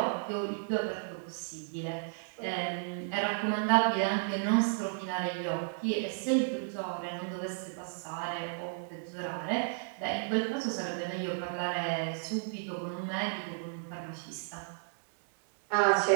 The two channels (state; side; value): silent; left; 56 dB below the other